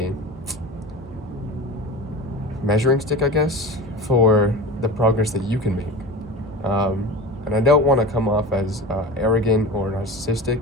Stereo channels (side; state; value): both; normal; correlation 0.32